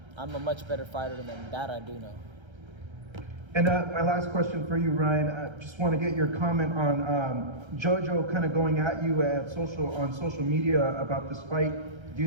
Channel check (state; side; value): late; left; 1.3 ms